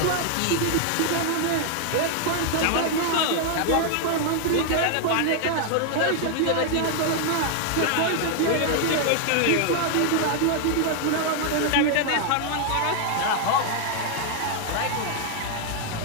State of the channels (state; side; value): different; both; correlation 0.00